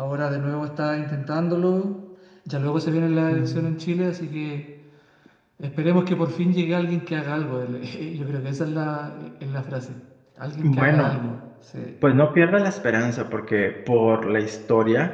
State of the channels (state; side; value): identical; both; correlation 1.00